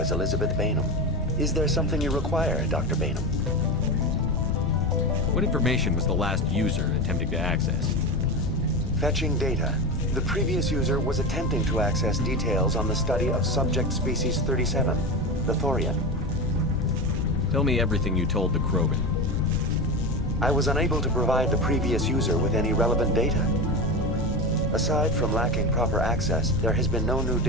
Elizabeth Bainham. Is there something you require, Dr. Bainham? What information was the last user attempting to access? Fetching data. The previous user was attempting to access details on the study of subject species 37, the Thorian. Tell me everything you told the Krogan. I was unable to provide the previous user with any relevant data. Aside from lacking proper access, there has been no new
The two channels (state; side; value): normal; both; correlation 0.22